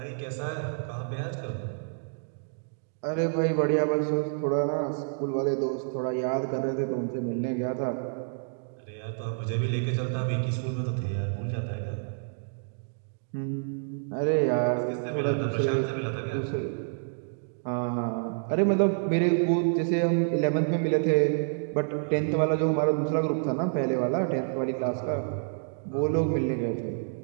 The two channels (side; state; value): left; silent; digital silence